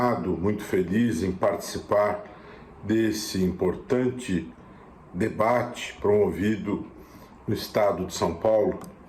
muito feliz em participar desse importante debate promovido no Estado de São Paulo.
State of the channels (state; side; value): identical; both; correlation 1.00